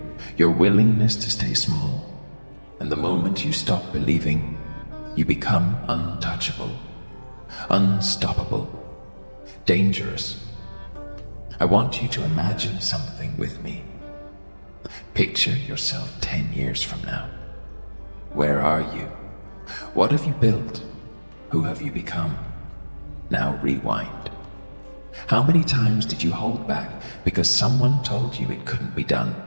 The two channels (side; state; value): both; inverted; correlation -1.00